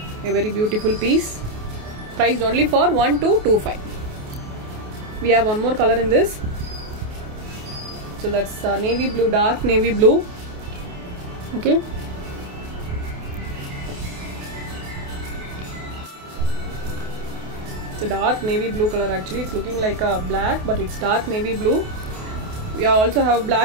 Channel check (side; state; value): left; late; 28 ms